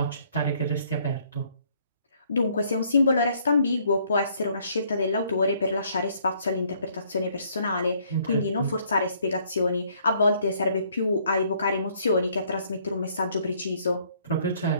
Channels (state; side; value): inverted; both; correlation -0.65